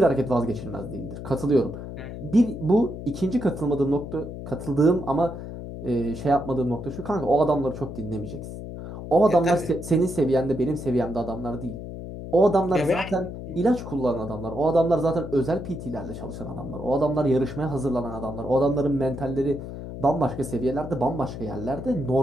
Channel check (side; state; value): left; noise; hum, 9 dB below the sound